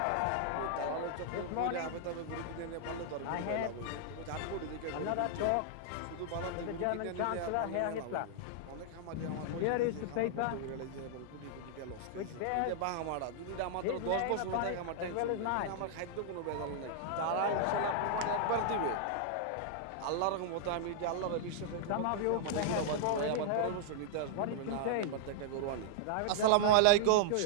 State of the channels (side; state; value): both; different; correlation -0.01